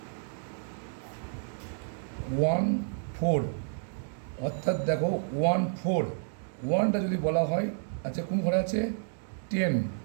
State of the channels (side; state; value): left; silent; 57 dB below the other